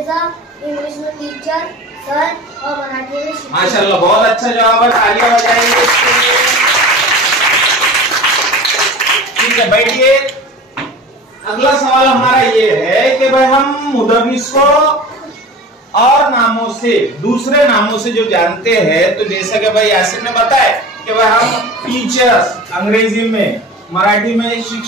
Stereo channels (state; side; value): normal; both; correlation 0.36